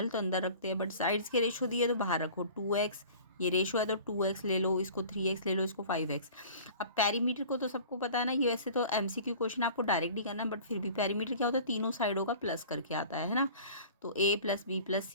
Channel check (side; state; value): both; inverted; correlation -0.44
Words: तो अंदर रखते हैं, बट साइड्स के रेशो दिए तो बाहर रखो। 2x ये रेशो है तो 2x ले लो, इसको 3x ले लो, इसको 5x। अब पैरीमीटर को तो सबको पता है ना, ये वैसे तो एमसीक्यू क्वेश्चन आपको डायरेक्ट ही करना है, बट फिर भी पैरीमीटर क्या होता है, तीनों साइडों का प्लस करके आता है ना। तो a प्लस बी प्लस